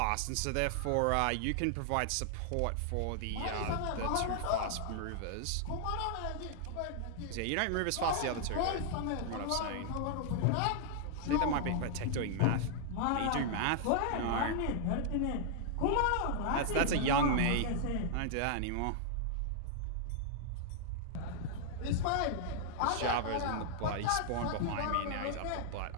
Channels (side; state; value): both; different; correlation -0.01